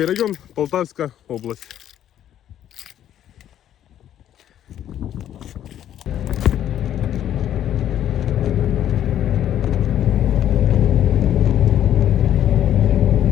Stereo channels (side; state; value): right; quieter; 11.0 dB